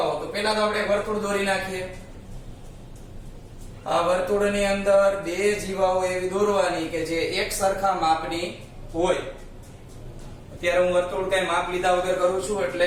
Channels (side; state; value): both; identical; correlation 1.00